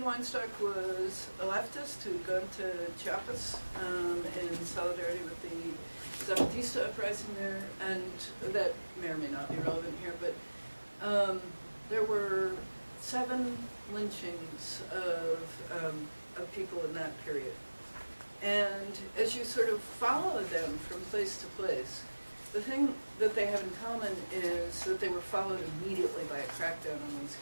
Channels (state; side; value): inverted; both; correlation -1.00